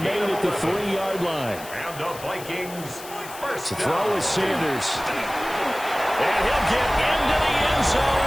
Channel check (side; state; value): left; noise; hiss, 15 dB below the sound